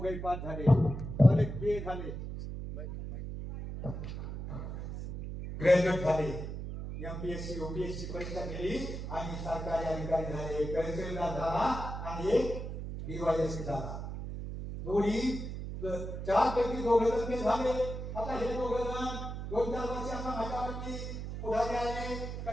पास झाले, अनेक बी झाले, ग्रॅज्युएट झाले, एमपीएससी यूपीएससी परीक्षा दिली आणि सरकारी अधिकारी झाले. तहसीलदार झाला आणि एक डीवायएसपी झाला. दोन्ही 4 पैकी 2 जण झाले. आता हे 2 जण 2-4 वर्षांना माझ्यावरती पुढारी आले का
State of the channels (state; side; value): noise; right; hum, 6 dB below the sound